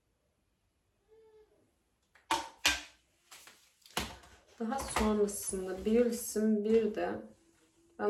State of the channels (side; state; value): both; identical; correlation 1.00